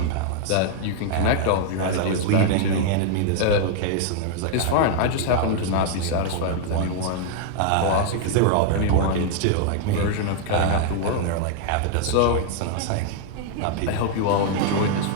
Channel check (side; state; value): both; different; correlation 0.00